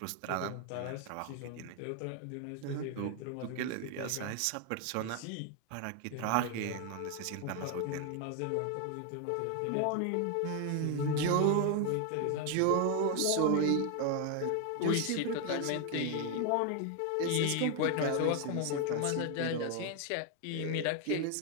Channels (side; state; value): both; different; correlation 0.01